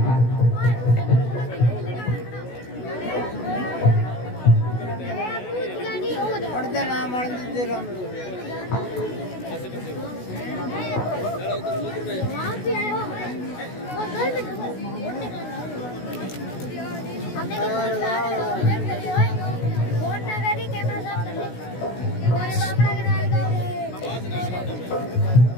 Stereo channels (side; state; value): right; late; 16 ms